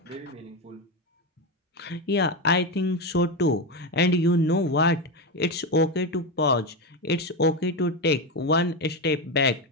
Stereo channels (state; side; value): normal; both; correlation 0.13